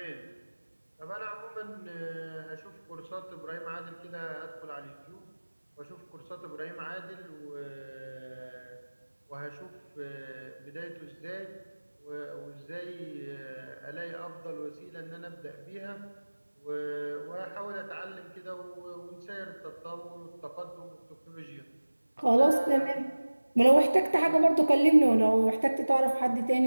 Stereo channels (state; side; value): inverted; both; correlation -1.00